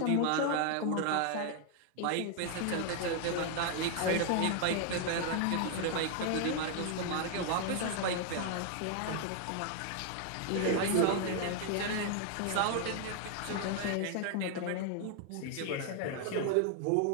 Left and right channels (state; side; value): different; both; correlation 0.00